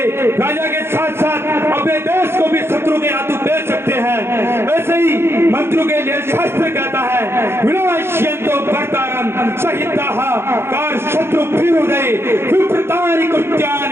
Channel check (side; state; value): left; late; 0.12 ms